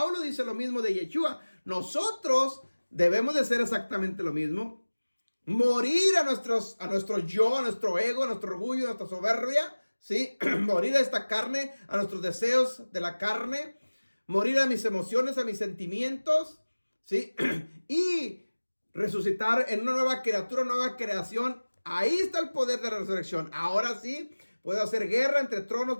dice lo mismo de Yeshua. Nosotros debemos de hacer exactamente lo mismo. Morir a nuestro yo, a nuestro ego, a nuestro orgullo, a nuestra soberbia, ¿sí? Morir a esta carne, a nuestros deseos de la carne. Morir a mis emociones, a mis sentimientos, ¿sí? Y resucitar en una nueva criatura, una nueva creación. Ahí está el poder de la resurrección. Ahora sí, puedo hacer guerra entre tronos,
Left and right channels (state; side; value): inverted; both; correlation -1.00